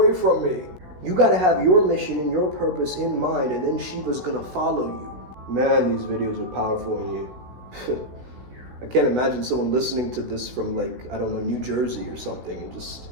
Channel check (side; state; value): left; late; 16 ms